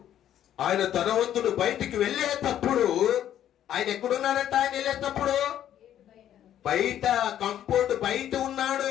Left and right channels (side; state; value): right; quieter; 11.0 dB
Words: ఆయన ధనవంతుడు బయటికి వెళ్ళేటప్పుడు ఆయన ఎక్కడున్నాడంట? ఆయన వెళ్ళేటప్పుడు బయట, కంపౌండ్ బయట ఉన్నాడు.